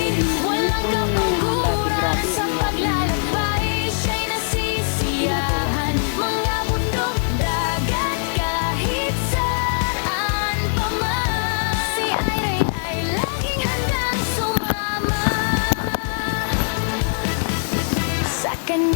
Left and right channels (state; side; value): silent; right; 61 dB below the other